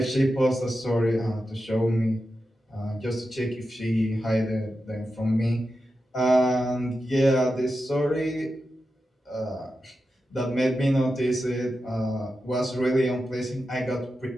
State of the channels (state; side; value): normal; both; correlation 0.90